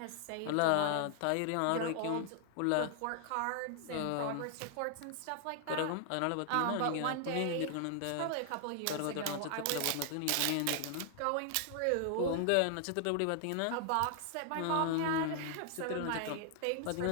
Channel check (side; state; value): both; different; correlation 0.00